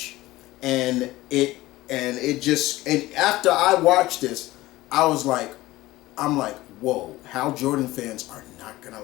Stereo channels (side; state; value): right; quieter; 17.8 dB